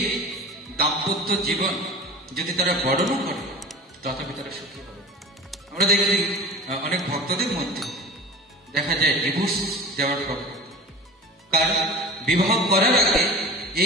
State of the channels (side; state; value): both; normal; correlation 0.35